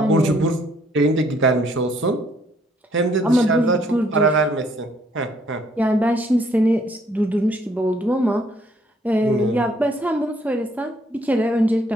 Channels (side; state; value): both; normal; correlation 0.66